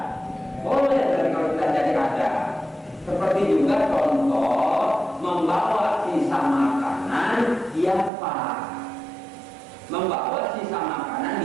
Boleh, tapi kalau tidak jadi ada. Seperti juga contoh membawa sisa makanan diapa. Membawa sisa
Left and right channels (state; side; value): drops out; left; at 8.1 s